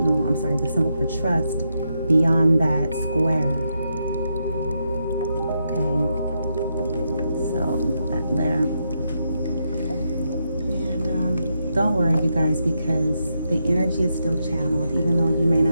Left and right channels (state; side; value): inverted; both; correlation -0.82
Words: symbol for trust beyond that square. Okay, so put that there. And don't worry, you guys, because the energy is still channeled. Even though you may